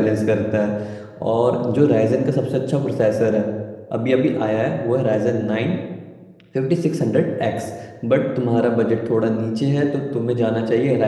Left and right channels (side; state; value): both; identical; correlation 1.00